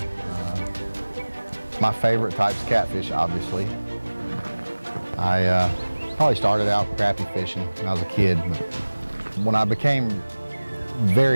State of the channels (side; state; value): both; inverted; correlation -1.00